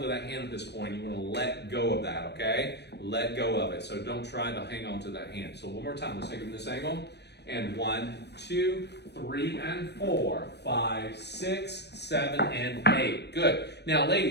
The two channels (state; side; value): late; right; 0.49 ms